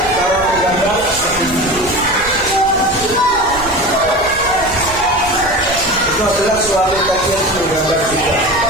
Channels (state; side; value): noise; right; rumble, 15 dB below the sound